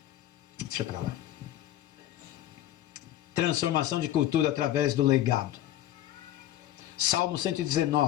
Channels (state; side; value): quieter; right; 13.1 dB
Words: Deixa pra lá. Transformação de cultura através do legado. Salmo